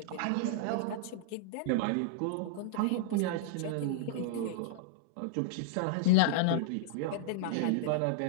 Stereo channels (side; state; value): both; different; correlation -0.02